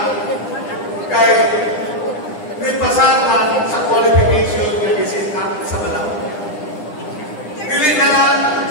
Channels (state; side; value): late; right; 9.9 ms